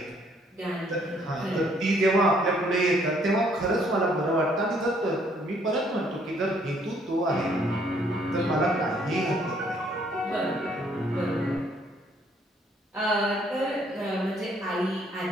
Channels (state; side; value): normal; both; correlation 0.65